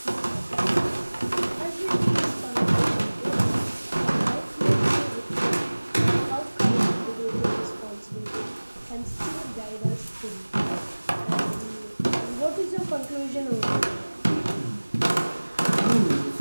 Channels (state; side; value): inverted; both; correlation -1.00